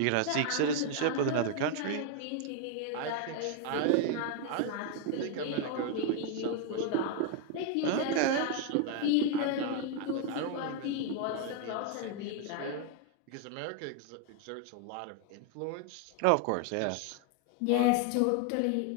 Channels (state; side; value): different; both; correlation 0.00